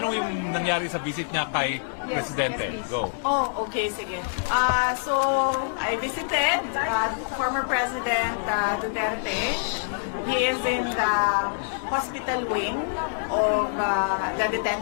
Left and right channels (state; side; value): silent; right; 61 dB below the other